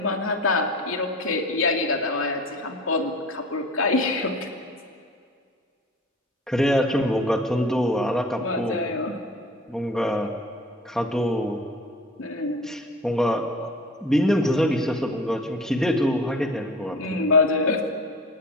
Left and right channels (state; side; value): normal; both; correlation 0.40